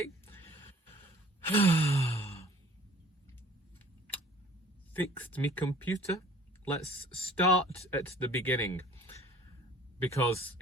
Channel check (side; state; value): both; normal; correlation 0.51